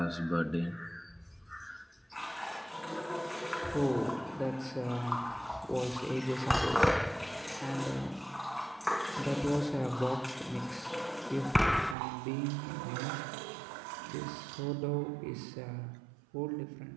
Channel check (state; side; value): drops out; left; at 12.0 s